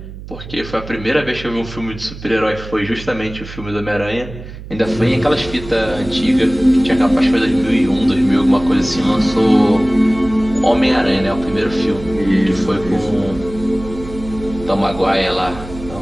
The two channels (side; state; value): right; noise; hum, 13 dB below the sound